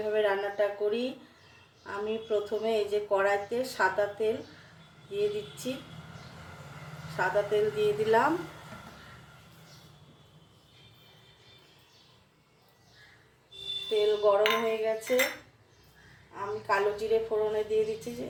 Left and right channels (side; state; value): both; identical; correlation 1.00